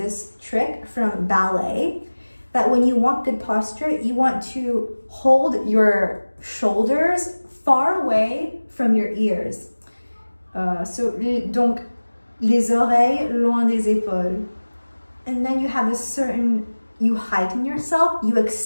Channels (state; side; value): inverted; both; correlation -1.00